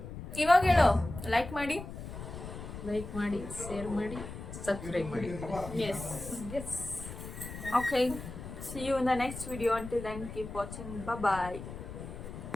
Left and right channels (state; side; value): noise; left; rumble, 10 dB below the sound